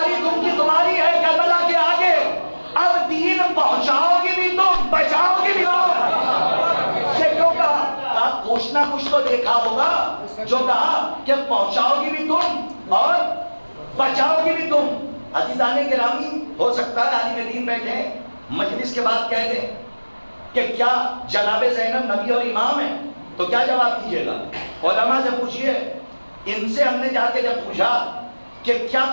تمہاری ہے کربلا کے آگے، اب دین پہنچاؤ گی بھی تم، بچاؤ گی بھی تم۔ کچھ نہ کچھ تو دیکھا ہوگا جو کہا کہ پہنچاؤ گی بھی تم اور بچاؤ گی بھی تم۔ عزیزان گرامی، ہو سکتا ہے عالم دین بیٹھے مجلس کے بعد کہہ دیں کہ کیا جناب زینب نبی اور امام ہیں، تو کیا جواب دیجیے گا؟ علماء سے پوچھئے ان سے ہم نے جا کے جب پوچھا کہ کیا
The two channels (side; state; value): both; inverted; correlation -1.00